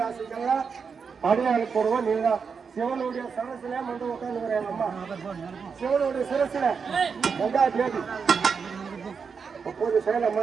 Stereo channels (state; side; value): quieter; left; 5.8 dB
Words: அடையாள போடுவோம். நீங்க சிவனுடைய சரசுல வந்து உட்காந்து அம்மா சிவனுடைய சிரசுல கங்கா தேவி அப்போது